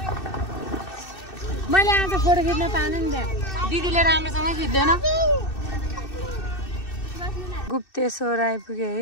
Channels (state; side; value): late; right; 2.6 ms